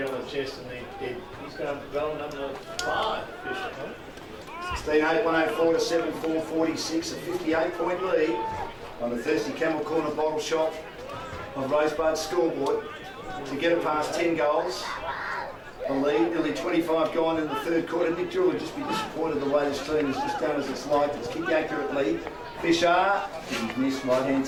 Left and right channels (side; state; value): both; identical; correlation 1.00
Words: on the chest, and he's going to go number 5, Fisher. 16-8, 104 to 7-4, 46, a 58-point lead on the Thirsty Camel Corner bottle shop of Rosebud scoreboard to get it past 10 goals. The lead, nearly 25 gone in the third quarter. Nick Jewell would just be disappointed the way this team has just done as it's like. It's kicked accurately. Fisher, he's missed right hand